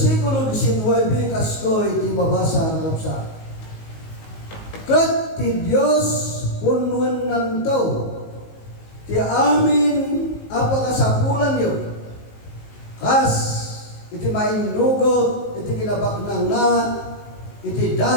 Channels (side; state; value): right; late; 19 ms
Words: 19 kasto iti mabasa ng kapsa. Kat ti Dios punwen nantaw ti amin apakasapulan yo. Kas iti mainugot iti kinabaknang na iti